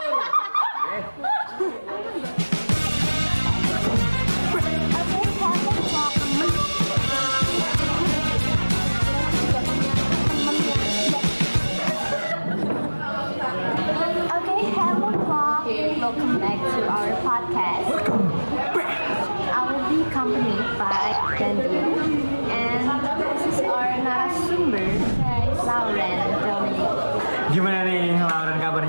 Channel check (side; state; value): both; inverted; correlation -1.00